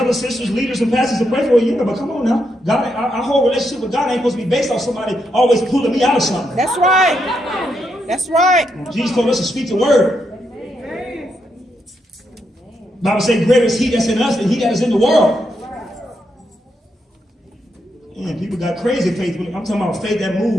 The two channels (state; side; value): normal; both; correlation 0.81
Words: sisters, leaders, and pastors to pray for you. But come on now. God, our whole relationship with God ain't supposed to be based on somebody always pulling me out of something. That's right. That's right. Jesus told us to speak the word. The Bible says, greater is he that's in us than he that is in the world. Man, people got crazy faith. I'm talking about faith that